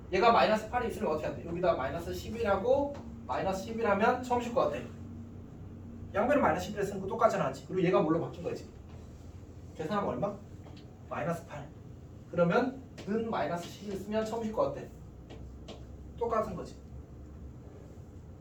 얘가 마이너스 8이 있으면 어떻게 한대? 여기다 마이너스 11하고 마이너스 11하면 처음 실 거 같아. 양변을 마이너스 11에 쓰는 거 똑같잖아, 맞지? 그리고 얘가 뭘로 바뀐 거지? 계산하면 얼마? 마이너스 8. 그러면 는 마이너스 11 쓰면 처음 실 거 같아. 똑같은 거지.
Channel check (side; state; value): both; identical; correlation 1.00